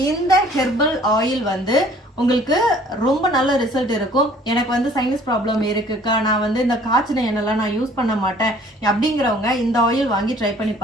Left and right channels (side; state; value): both; normal; correlation 0.55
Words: இந்த ஹெர்பல் ஆயில் வந்து உங்களுக்கு ரொம்ப நல்ல ரிசல்ட் இருக்கும். எனக்கு வந்து சைனஸ் ப்ராப்ளம் இருக்குக்கா, நான் வந்து இந்த காய்ச்சின எண்ணெய்லாம் நான் யூஸ் பண்ண மாட்டேன் அப்படிங்கிறவங்க இந்த ஆயில் வாங்கி ட்ரை பண்ணி